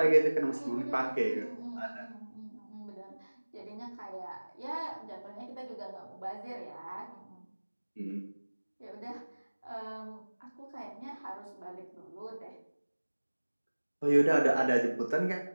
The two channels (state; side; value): inverted; both; correlation -1.00